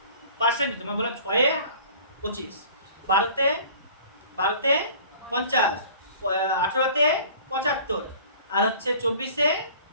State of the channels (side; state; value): both; inverted; correlation -0.47